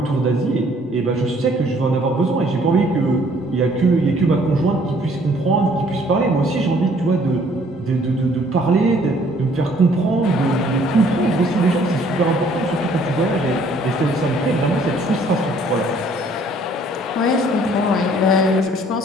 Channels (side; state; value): both; normal; correlation 0.60